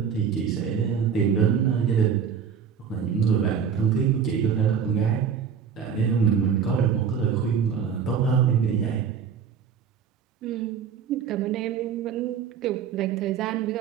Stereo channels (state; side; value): quieter; left; 7.1 dB